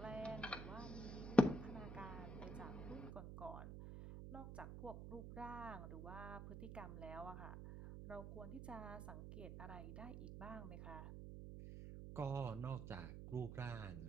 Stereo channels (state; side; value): noise; right; hum, 7 dB below the sound